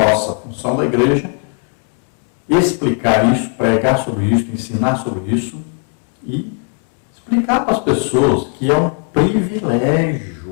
função da igreja, explicar isso, pregar sobre isso, ensinar sobre isso e explicar para as pessoas que é um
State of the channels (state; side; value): quieter; right; 37.1 dB